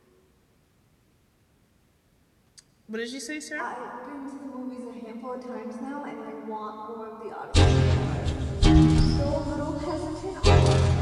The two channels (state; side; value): identical; both; correlation 1.00